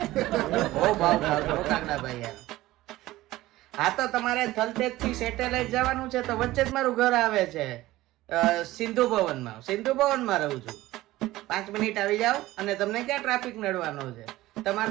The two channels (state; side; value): quieter; left; 17.0 dB